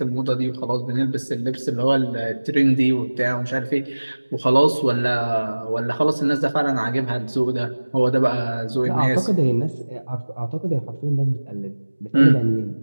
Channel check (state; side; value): inverted; both; correlation -1.00